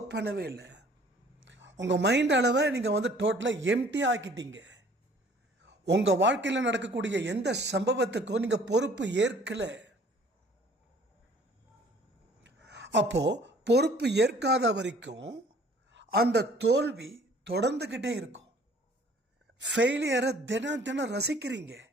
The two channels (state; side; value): normal; both; correlation 0.54